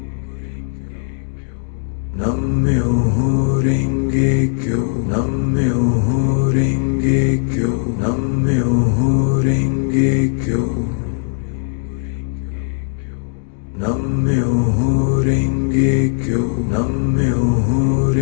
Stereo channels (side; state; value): right; silent; digital silence